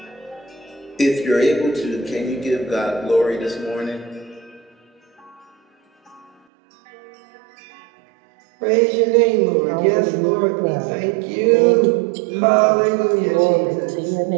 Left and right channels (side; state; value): left; drops out; at 6.3 s